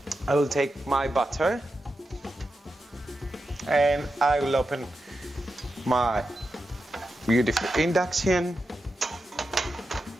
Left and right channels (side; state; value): both; normal; correlation 0.89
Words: I will take my butter and I will open my beautiful induction.